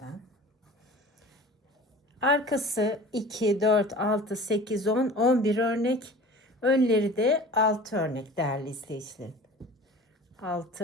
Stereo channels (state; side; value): normal; both; correlation 0.41